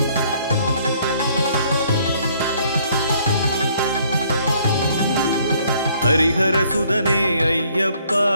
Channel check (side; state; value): both; inverted; correlation -0.63